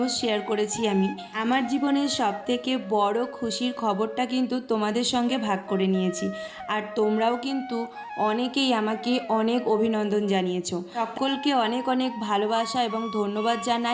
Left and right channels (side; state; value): both; identical; correlation 1.00